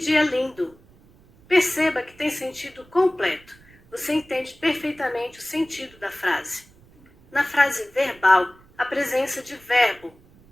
lindo! Perceba que tem sentido completo. Você entende perfeitamente o sentido da frase. Na frase verbal, a presença de verbo.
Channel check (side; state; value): right; noise; rumble, 27 dB below the sound